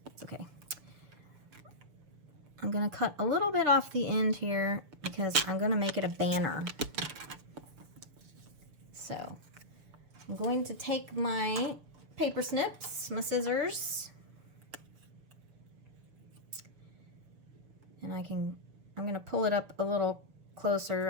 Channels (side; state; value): left; late; 6.7 ms